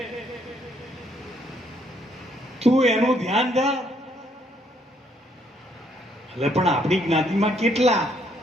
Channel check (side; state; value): both; normal; correlation 0.70